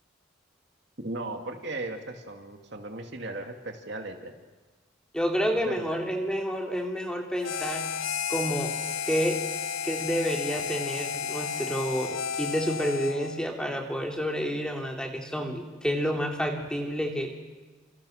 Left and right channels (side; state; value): both; normal; correlation 0.58